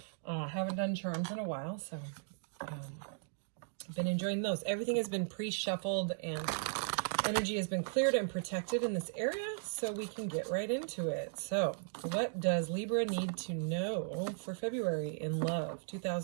I haven't done charms in a while, so I've been enjoying those. Everything has been pre-shuffled and energy has been cleared and protected in this area, so we can get right into it. So what does Libra need to know for February in love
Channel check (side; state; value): left; silent; digital silence